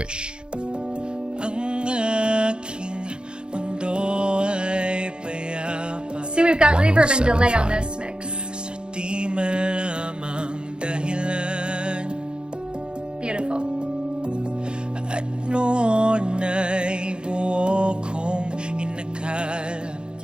See, we've got reverb and delay on this mix. Beautiful.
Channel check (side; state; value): left; late; 0.051 ms